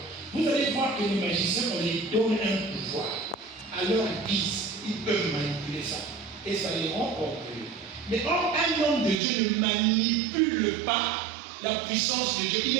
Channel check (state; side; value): drops out; left; at 9.2 s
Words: vous allez voir que les magiciens, on les donne un pouvoir. Alors ils peuvent manipuler ça. Et ça les rend orgueilleux. Mais or, un homme de Dieu ne manipule pas la puissance de Dieu. Il